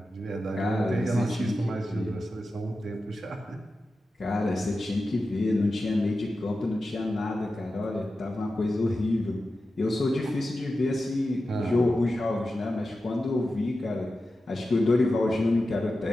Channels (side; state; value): both; normal; correlation 0.92